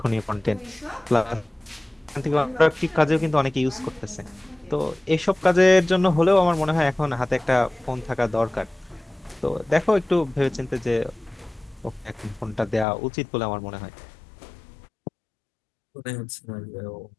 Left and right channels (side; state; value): right; drops out; at 12.9 s